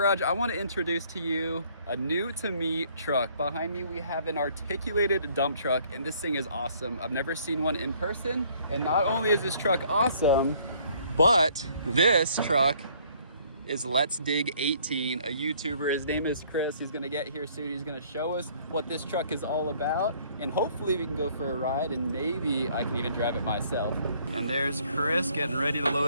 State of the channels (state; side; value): inverted; both; correlation -0.61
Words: I want to introduce to you a new to me truck. Behind me we have an articulated dump truck, and this thing is awesome. I've never seen one in person, and not only is this truck awesome, but this truck is Let's Dig 18, a YouTuber. His name is Chris. He's gonna get here soon. He's gonna show us what this truck is all about, and hopefully we can go for a ride, and maybe I can even drive it myself. And there's Chris getting ready to